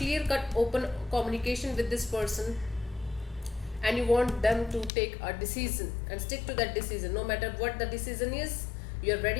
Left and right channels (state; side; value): drops out; right; at 4.9 s